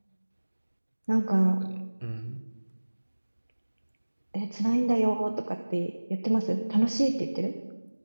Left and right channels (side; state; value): both; inverted; correlation -1.00